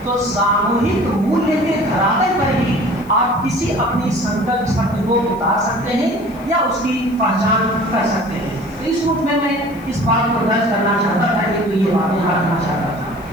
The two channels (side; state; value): left; noise; hiss, 27 dB below the sound